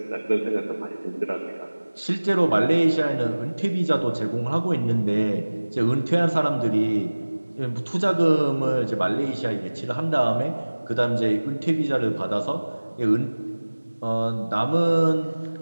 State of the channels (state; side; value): inverted; both; correlation -1.00